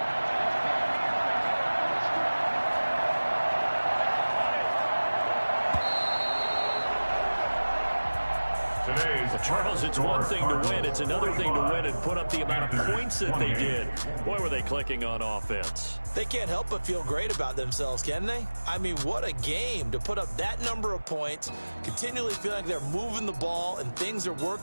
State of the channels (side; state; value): both; inverted; correlation -1.00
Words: Charles, it's one thing to win. It's another thing to win and put up the amount of points that they did. Boy, were they clicking on offense. They can't help but feel great about themselves, can they? I mean, what a game to put up that number of points, continually feeling like they're moving the ball and things are